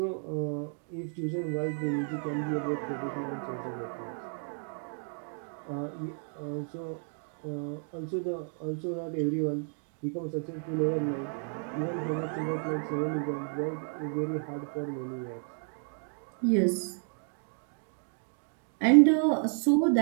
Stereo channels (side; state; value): left; silent; 56 dB below the other